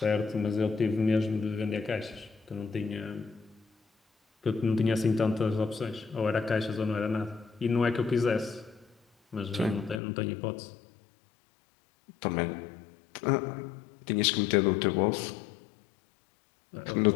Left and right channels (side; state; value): right; drops out; at 10.0 s